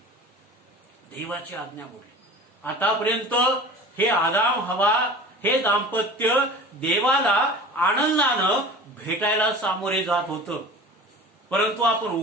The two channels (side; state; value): both; normal; correlation 0.39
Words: आतापर्यंत हे आदाम हवा हे दाम्पत्य देवाला आनंदानं भेटायला सामोरे जात होतं, परंतु आपण